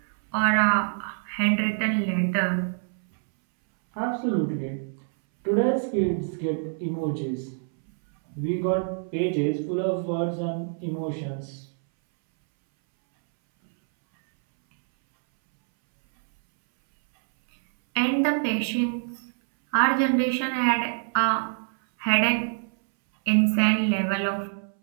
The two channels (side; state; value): left; silent; 61 dB below the other